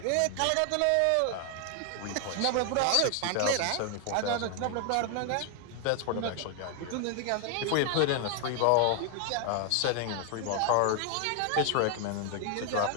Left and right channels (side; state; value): both; different; correlation 0.01